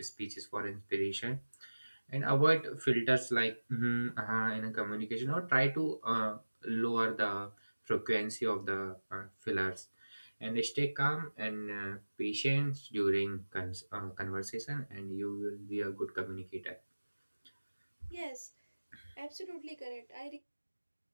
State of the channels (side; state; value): both; inverted; correlation -1.00